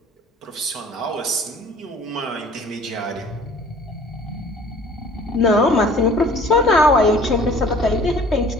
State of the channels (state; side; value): normal; both; correlation 0.50